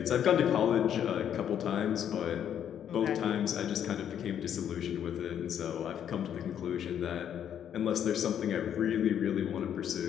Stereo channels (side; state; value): right; quieter; 9.4 dB